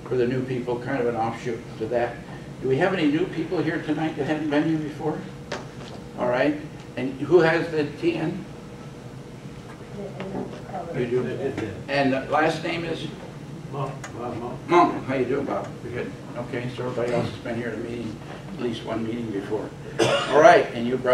for the new people, kind of an offshoot to that. Do we have any new people here tonight that haven't been here before? All right. And who has the TN? You do. And the last name is? Monk. How you doing, Bob? Good. Okay, so everybody else has been here at a meeting, at least one meeting before. All right, and you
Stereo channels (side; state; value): both; identical; correlation 1.00